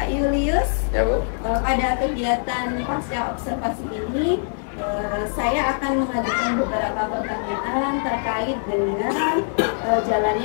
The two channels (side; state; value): right; silent; digital silence